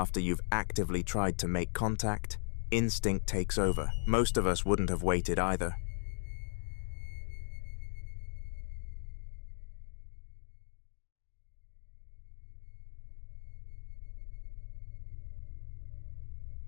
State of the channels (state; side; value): silent; right; digital silence